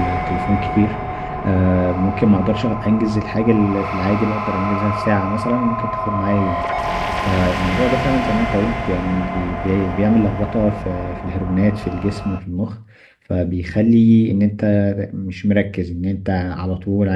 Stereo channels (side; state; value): both; identical; correlation 1.00